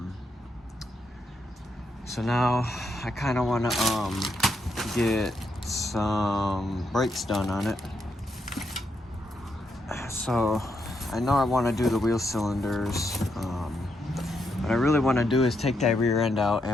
So now I kind of want to get some brakes done on it. So I know I want to do the wheel cylinders. What I really want to do is take that rear end out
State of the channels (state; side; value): normal; both; correlation 0.80